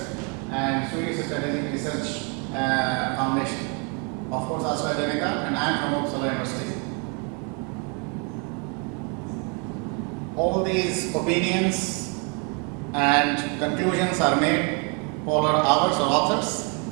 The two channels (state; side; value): quieter; left; 35.5 dB